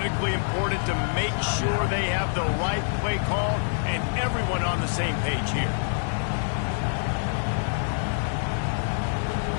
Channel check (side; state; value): right; silent; digital silence